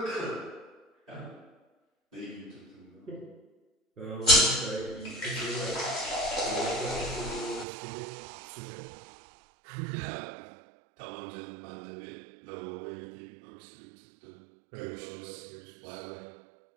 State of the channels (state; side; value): drops out; left; at 7.7 s